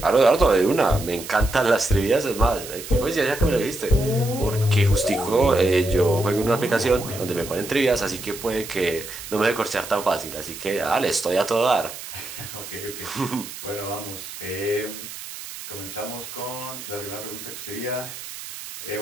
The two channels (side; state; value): right; noise; hiss, 11 dB below the sound